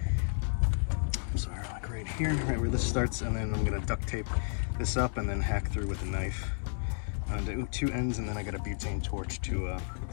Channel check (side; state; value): right; silent; digital silence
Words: I'm sorry, like right here, right where this starts, and then I'm gonna duct tape this up and then hack through with a knife onto two ends, and then I got a butane torch to